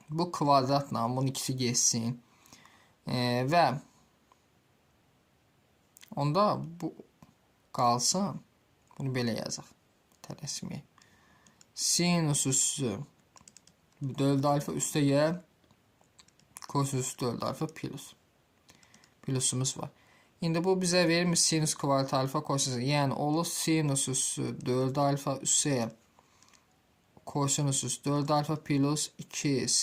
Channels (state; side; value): identical; both; correlation 1.00